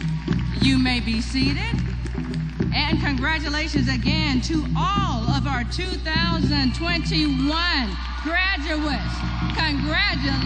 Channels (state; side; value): identical; both; correlation 1.00